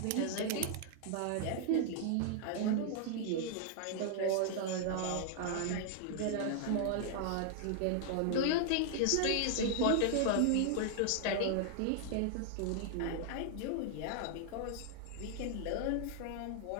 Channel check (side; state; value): both; different; correlation -0.01